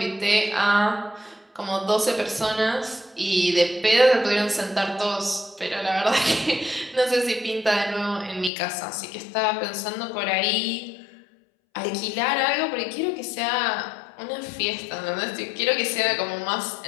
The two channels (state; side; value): drops out; right; at 8.5 s